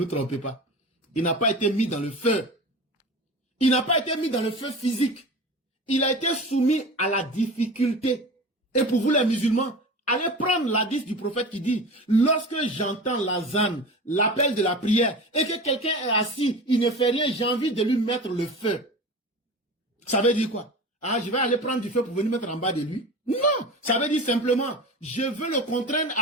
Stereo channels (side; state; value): both; normal; correlation 0.33